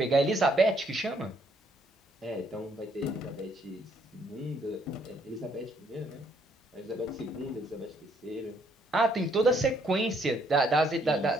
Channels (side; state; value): both; normal; correlation 0.68